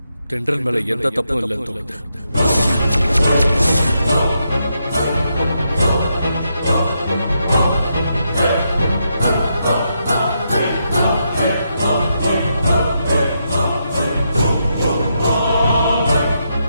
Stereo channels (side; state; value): both; inverted; correlation -0.82